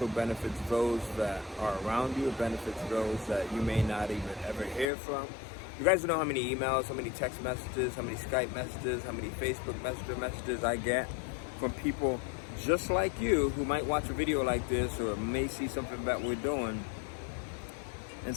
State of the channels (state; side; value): drops out; right; at 4.9 s